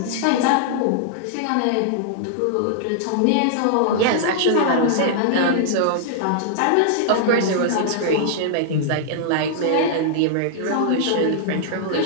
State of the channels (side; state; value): both; different; correlation -0.01